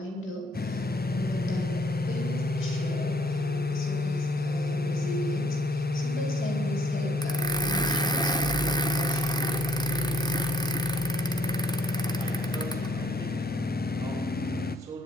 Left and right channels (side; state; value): both; normal; correlation 0.66